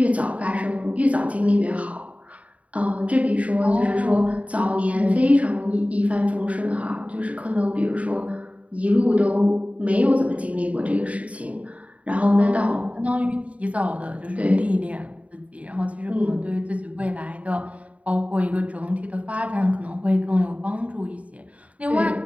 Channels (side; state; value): left; late; 0.067 ms